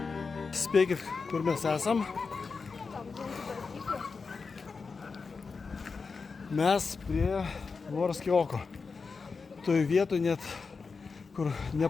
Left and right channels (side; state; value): right; quieter; 4.8 dB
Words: Spėkit, kur mes esam. Mes prie Morskio oko. Toj vietoj net, kur